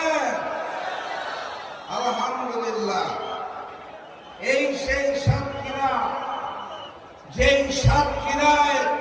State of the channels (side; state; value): both; identical; correlation 1.00